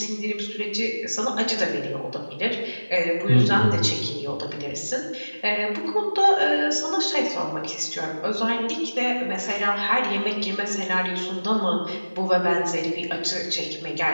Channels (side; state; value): both; inverted; correlation -1.00